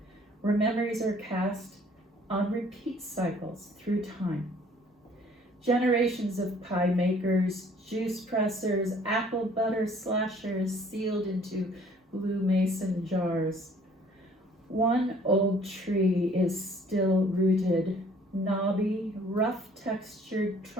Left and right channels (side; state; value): both; normal; correlation 0.57